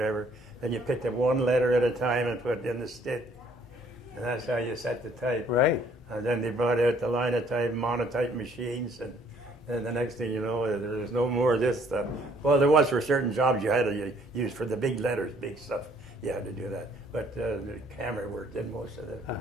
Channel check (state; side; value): normal; both; correlation 0.62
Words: then you picked up one letter at a time and put it in the stick, and that's how you set the type. Right. And then they brought out the linotype, monotype machines, and the next thing you know, there's no more of this stuff. Well, there was for certain jobs you had to use for the big letters, big stuff. You had to do that. But the camera work did most of the